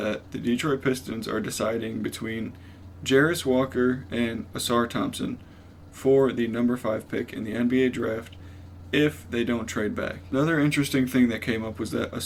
the Detroit Pistons are deciding between Jarris Walker and Ausar Thompson for the number 5 pick in the NBA draft if they don't trade back. Another interesting thing that came up was that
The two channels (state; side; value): identical; both; correlation 1.00